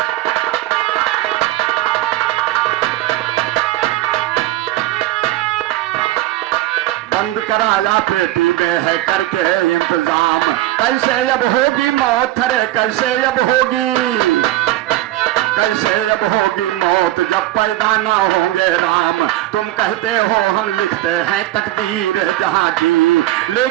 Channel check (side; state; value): left; quieter; 15.8 dB